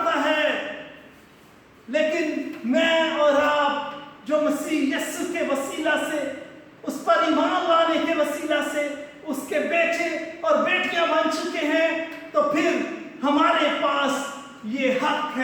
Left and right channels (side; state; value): both; identical; correlation 1.00